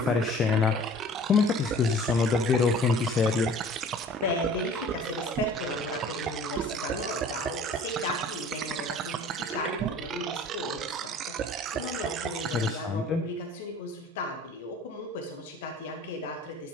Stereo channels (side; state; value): both; normal; correlation 0.48